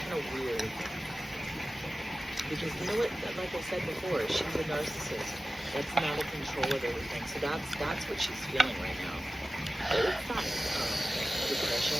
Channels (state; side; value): normal; both; correlation 0.95